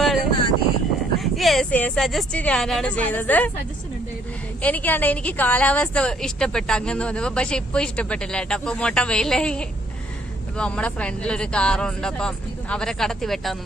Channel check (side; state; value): both; normal; correlation 0.66